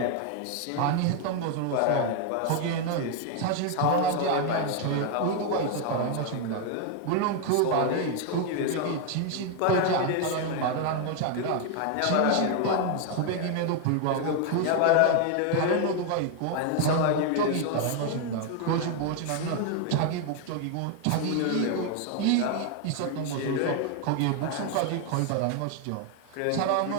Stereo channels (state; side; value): different; both; correlation 0.00